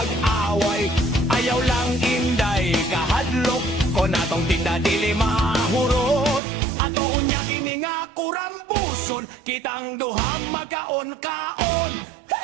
Ayaw lang inday kahadlok, kon atong tinda dili mahurot. Ato unya kini nga kurambuson, kitang duha magkaon-kaon.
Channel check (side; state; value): left; drops out; at 6.4 s